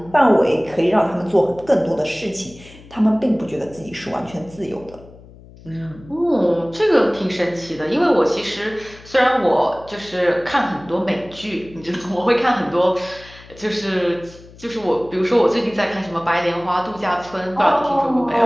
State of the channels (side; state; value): left; noise; hum, 21 dB below the sound